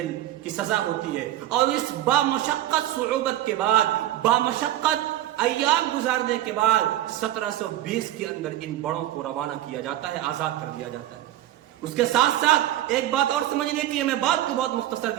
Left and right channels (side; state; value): left; quieter; 13.5 dB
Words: کی سزا ہوتی ہے، اور اس بامشقت صعوبت کے بعد، بامشقت ایام گزارنے کے بعد 1720 کے اندر ان بڑوں کو روانہ کیا جاتا ہے، آزاد کر دیا جاتا ہے۔ اس کے ساتھ ساتھ ایک بات اور سمجھنے کی ہے، میں بات کو بہت مختصر